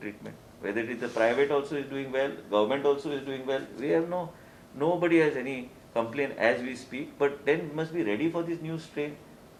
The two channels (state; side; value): identical; both; correlation 1.00